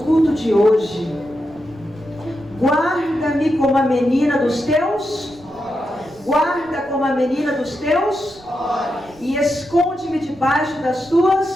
culto de hoje: guarda-me como a menina dos teus olhos. Guarda como a menina dos teus olhos. E esconde-me debaixo das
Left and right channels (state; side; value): noise; right; rumble, 26 dB below the sound